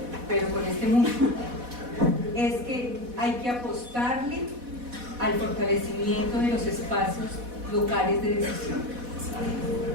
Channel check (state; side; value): late; left; 4.1 ms